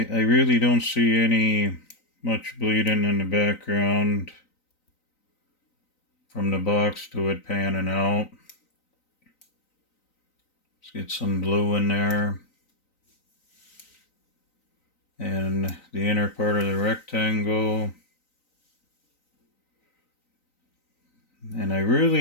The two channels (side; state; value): right; late; 3.9 ms